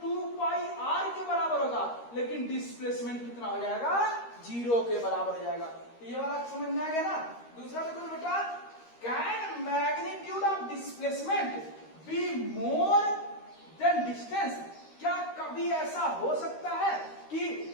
2πr के बराबर होगा, लेकिन डिस्प्लेसमेंट कितना हो जाएगा, जीरो के बराबर हो जाएगा। तो ये वाला समझ में आ गया ना। दूसरा देखो बेटा, can magnitude of displacement be more than distance. क्या कभी ऐसा हो सकता है कि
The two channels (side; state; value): right; late; 13 ms